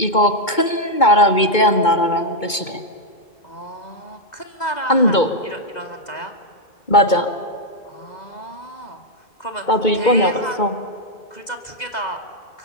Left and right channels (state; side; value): late; right; 2.2 ms